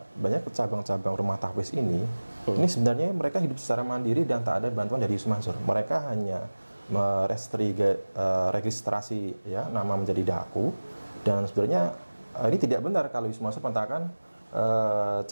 banyak cabang-cabang rumah tahfiz ini sebenarnya mereka hidup secara mandiri dan tak ada bantuan dari Yusuf Mansur. Mereka hanya registrasi ya nama menjadi daku, dan sebenarnya ini tidak benar kalau Yusuf Mansur mengatakan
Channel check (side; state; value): both; inverted; correlation -1.00